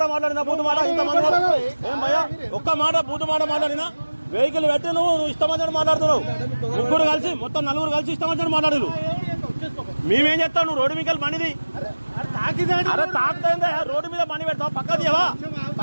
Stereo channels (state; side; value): inverted; both; correlation -1.00